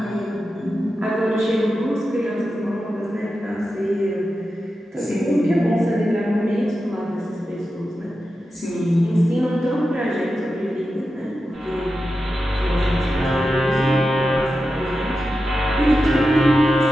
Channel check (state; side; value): normal; both; correlation 0.91